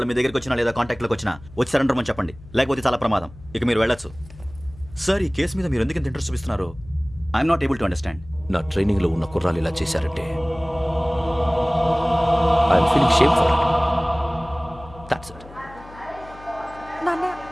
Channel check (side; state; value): left; noise; hum, 20 dB below the sound